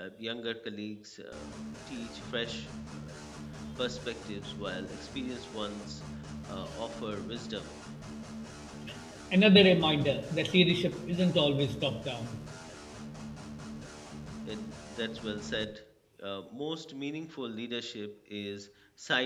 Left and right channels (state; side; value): identical; both; correlation 1.00